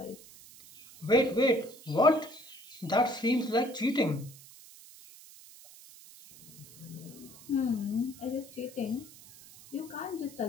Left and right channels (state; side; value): noise; right; hiss, 20 dB below the sound